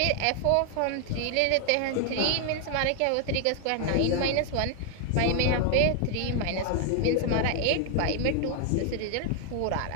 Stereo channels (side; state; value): both; different; correlation 0.00